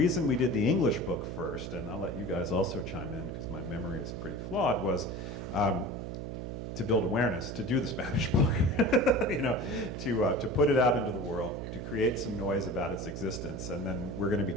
we did the English book first, and I'll let you guys also chime in because my memory is pretty flawed, was to build awareness, to do the Spanish book, you know, to put it out into the world, to create some noise about its existence, and then we're going to be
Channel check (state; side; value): noise; right; hum, 6 dB below the sound